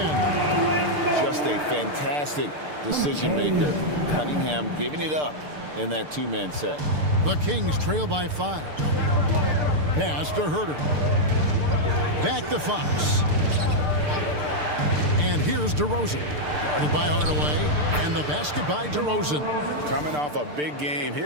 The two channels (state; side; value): late; left; 6.7 ms